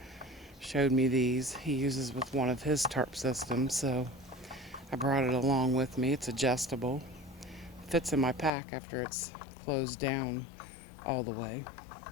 showed me these. He uses with one of his tarp systems, so I brought it along with me. It's adjustable. Fits in my pack after it's closed down all the way.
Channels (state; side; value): drops out; right; at 8.5 s